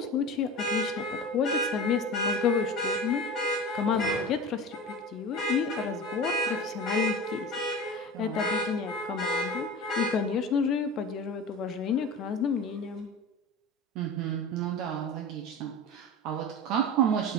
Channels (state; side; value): normal; both; correlation 0.31